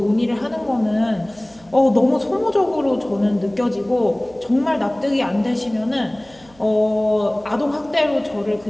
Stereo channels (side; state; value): right; noise; hum, 27 dB below the sound